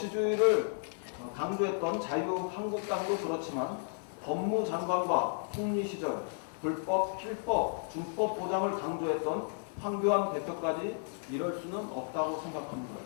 강조했던 자유한국당도 그렇지만 법무장관과 총리 시절 불법, 필법, 준법 보장을 강조했던 황교안 대표까지 이럴 수는 없다고 생각합니다.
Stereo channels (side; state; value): right; silent; digital silence